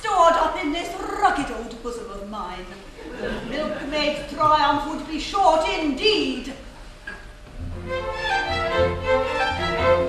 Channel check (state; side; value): identical; both; correlation 1.00